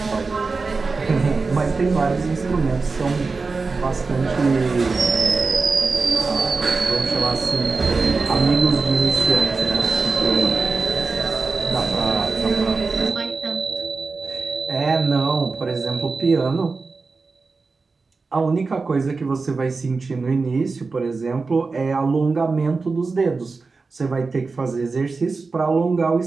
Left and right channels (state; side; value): quieter; left; 4.2 dB